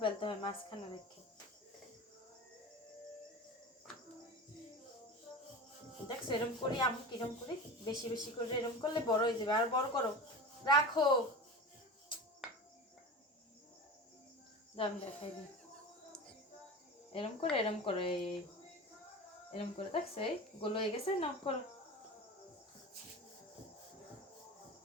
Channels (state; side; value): normal; both; correlation 0.30